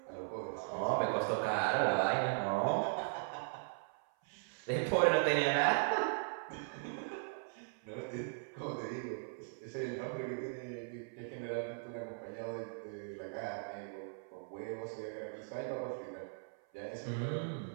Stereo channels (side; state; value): left; silent; 52 dB below the other